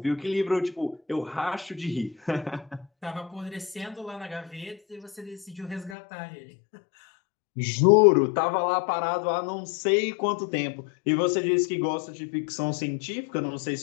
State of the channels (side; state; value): right; drops out; at 6.0 s